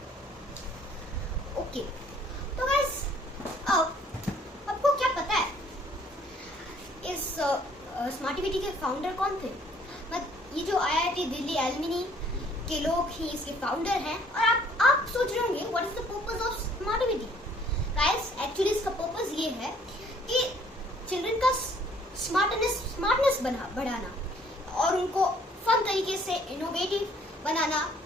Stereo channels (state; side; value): normal; both; correlation 0.60